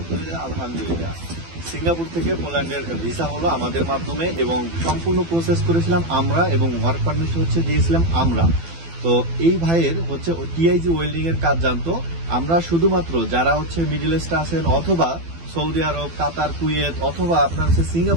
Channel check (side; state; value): left; late; 12 ms